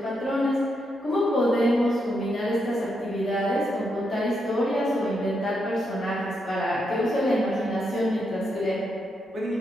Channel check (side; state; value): both; normal; correlation 0.81